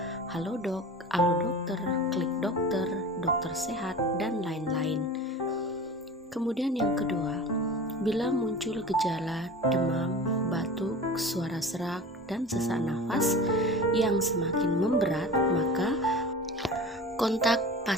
Halodoc, Alodokter, Klik Dokter, Dokter Sehat, dan lain-lain. Kemudian yang kedua, bila muncul gejala demam, batuk, suara serak, dan sesak nafas yang semakin memberat, maka kontak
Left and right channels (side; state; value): both; normal; correlation 0.36